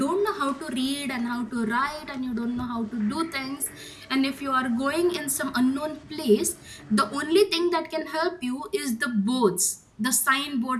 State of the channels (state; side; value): identical; both; correlation 1.00